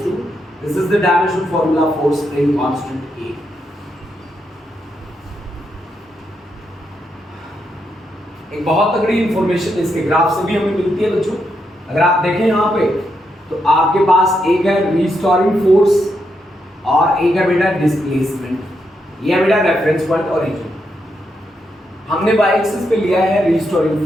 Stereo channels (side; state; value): both; normal; correlation 0.81